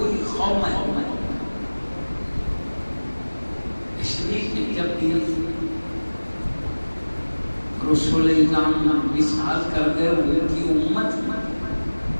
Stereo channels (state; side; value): inverted; both; correlation -1.00